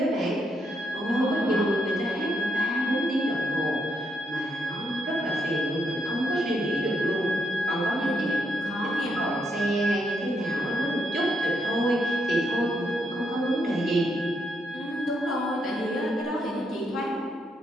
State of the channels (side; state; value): both; normal; correlation 0.78